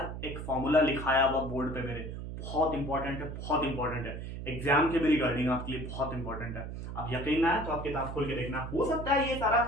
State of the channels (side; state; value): right; noise; hum, 7 dB below the sound